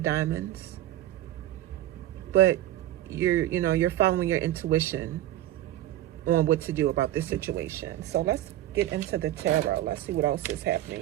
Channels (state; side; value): quieter; left; 14.2 dB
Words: Diamonds. But you're following your intuition on what to do about this situation. So let's get into the tarot. Let's see what else is